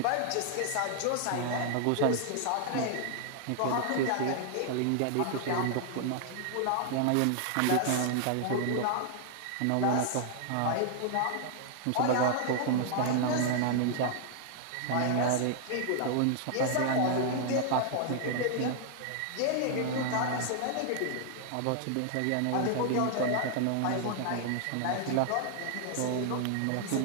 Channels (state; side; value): different; both; correlation 0.00